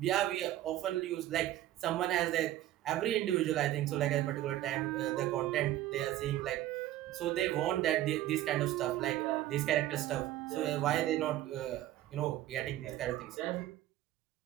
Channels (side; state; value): left; quieter; 14.0 dB